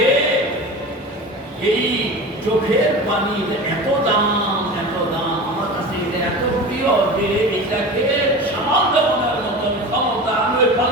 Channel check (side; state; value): both; normal; correlation 0.32